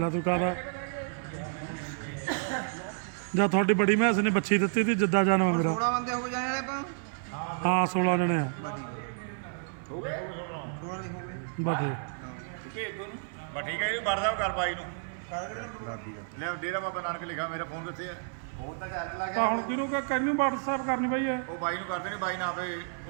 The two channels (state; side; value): silent; left; 57 dB below the other